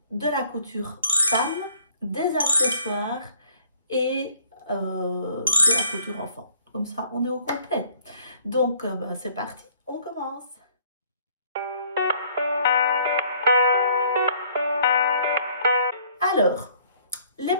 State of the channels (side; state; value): both; inverted; correlation -0.59